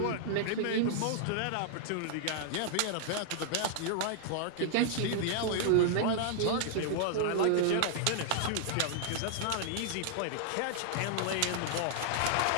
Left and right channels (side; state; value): both; different; correlation -0.01